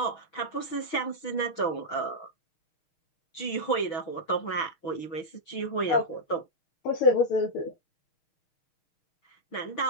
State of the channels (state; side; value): late; right; 6.1 ms